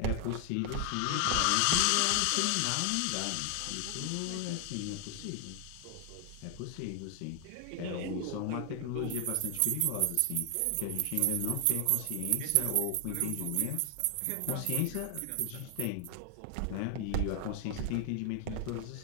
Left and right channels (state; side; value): different; both; correlation 0.00